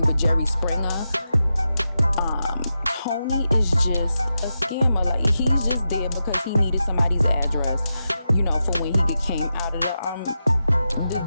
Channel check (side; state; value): both; inverted; correlation -0.88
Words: with Jerry Springer. Tony is just a scammer. Like, he's just there because he needed somebody's address, for when he came out of